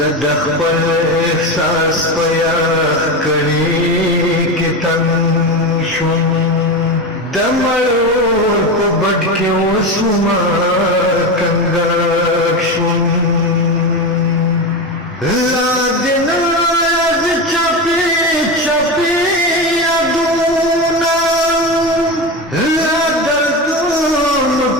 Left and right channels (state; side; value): normal; both; correlation 0.19